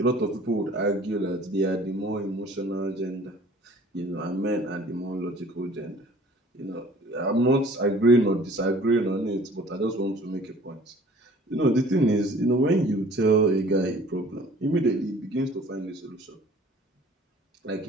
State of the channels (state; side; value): normal; both; correlation 0.51